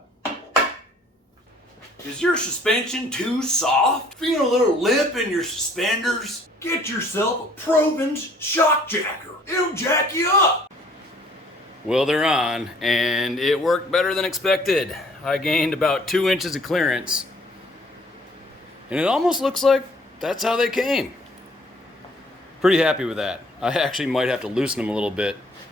Is your suspension too soft? Feeling a little lip in your suspenders? Get yourself a Provins shock jacker. It'll jack you up. Well, they're on, and it worked better than expected. I gained about 2 inches of clearance, and it almost looks like that's how they came. Pretty happy with that. I actually might have to loosen them a little bit,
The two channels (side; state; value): both; normal; correlation 0.58